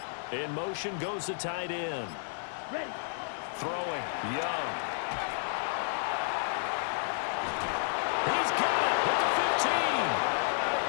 In motion goes the tight end. Ready. Throwing. Young. He's got it at the 15.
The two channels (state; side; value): silent; right; digital silence